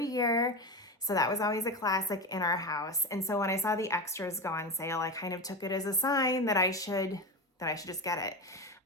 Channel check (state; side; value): normal; both; correlation 0.20